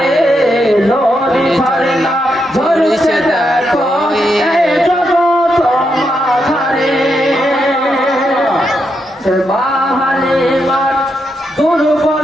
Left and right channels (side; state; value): both; normal; correlation 0.82